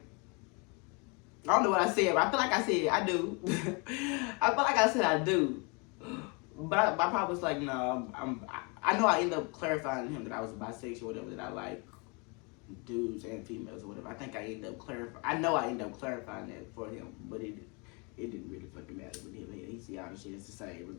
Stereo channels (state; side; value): quieter; right; 31.7 dB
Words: I don't know what I said, but I feel like I said I do. I feel like I said I do. But my pop was like, no, I know I ended up clarifying to him that I was bisexual, whatever, that I like dudes and females or whatever. I think I ended up clarifying. I know I ended up clarifying that for him, but it didn't really fucking matter with him. He see all the shit is the same